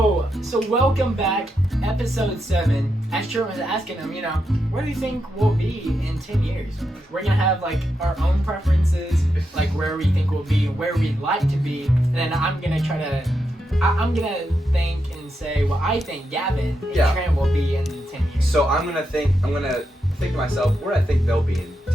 so welcome back, episode 7. As Trent was asking him, where do you think we'll be in 10 years? We're gonna have like our own preferences, like where we think we'll be, where we'd like to be, and then I'm gonna think and say what I think Gavin and Trent will be in 10 years. So I'm gonna think to myself where I think they'll be in 10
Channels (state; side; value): normal; both; correlation 0.85